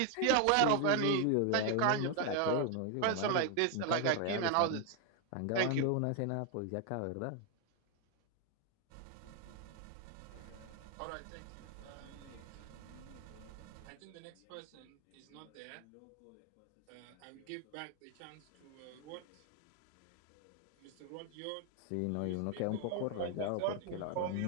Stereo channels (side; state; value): both; different; correlation 0.01